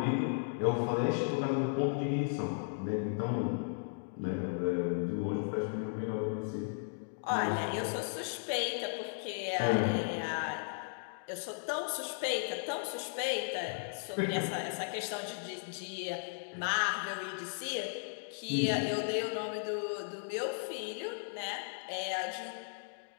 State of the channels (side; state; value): right; silent; digital silence